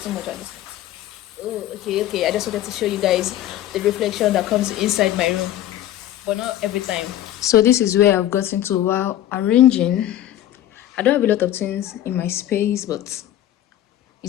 too much at this time. Oh, okay. I just wanted to show you guys the reflection that comes inside my room, but not every time. So this is where I've gotten to while arranging. I don't have a lot of things in my space, but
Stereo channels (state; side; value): quieter; right; 12.8 dB